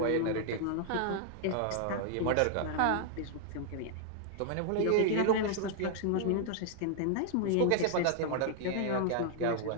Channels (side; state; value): both; different; correlation -0.01